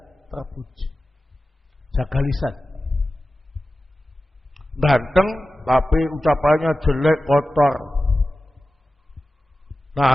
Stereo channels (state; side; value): normal; both; correlation 0.94